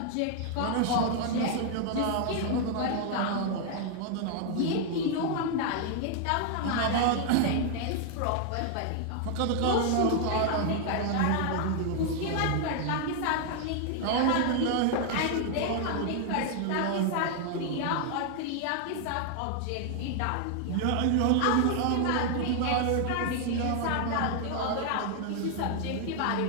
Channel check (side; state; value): both; different; correlation 0.00